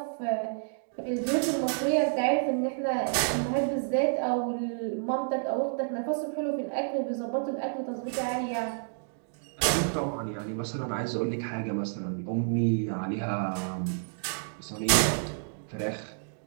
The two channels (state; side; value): silent; left; digital silence